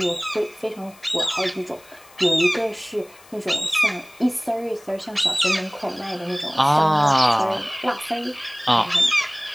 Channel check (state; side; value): noise; left; hiss, 25 dB below the sound